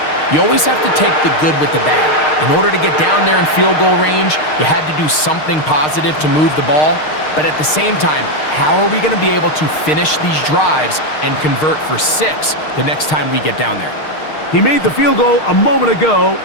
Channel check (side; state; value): right; late; 6.5 ms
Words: you always have to take the good with the bad. In order to get down there in field goal range, you had to do something positive to move the ball. But at the same time, how are we going to be able to finish these drives and convert for 6 the next time we get down there? He made the field goal a moment ago.